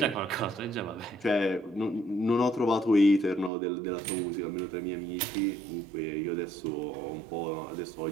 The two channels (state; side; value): drops out; left; at 3.5 s